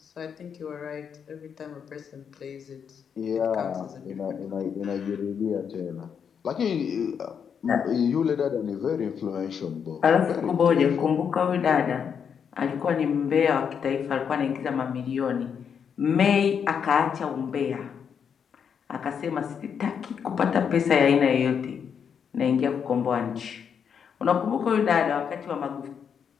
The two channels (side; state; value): right; quieter; 7.3 dB